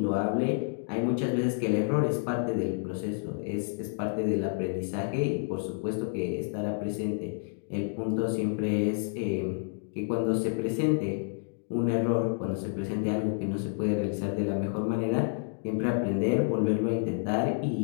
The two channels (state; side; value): silent; right; digital silence